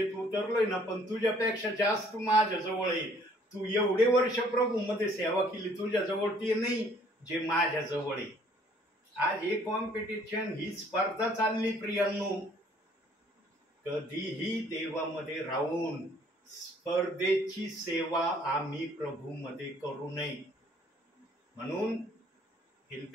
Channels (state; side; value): normal; both; correlation 0.60